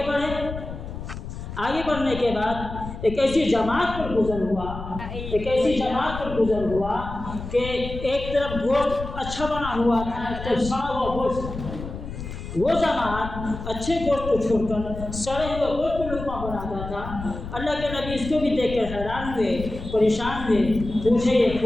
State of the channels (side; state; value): left; noise; rumble, 9 dB below the sound